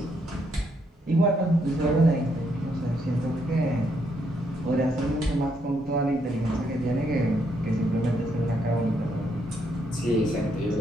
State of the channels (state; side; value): normal; both; correlation 0.75